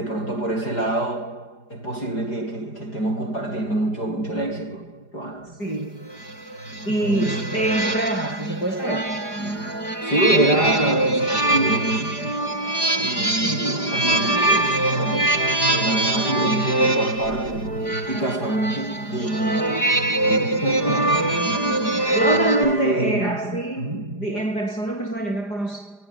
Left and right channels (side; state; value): right; late; 4.9 ms